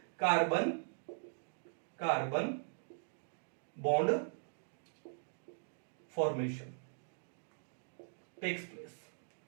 carbon carbon bond formation takes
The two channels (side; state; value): left; silent; digital silence